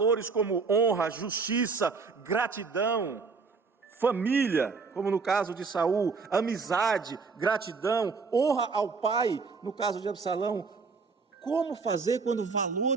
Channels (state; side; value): quieter; left; 4.8 dB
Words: como honra, justiça, gratidão, família, como no caso de Saul, amizade, gratidão, honra ao pai, no caso de Absalão? Como fazer quando